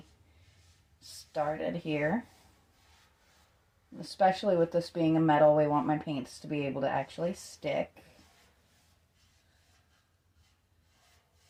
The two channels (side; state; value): both; identical; correlation 1.00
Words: started here. Especially with this being a metal, we want my paints to be able to actually stick.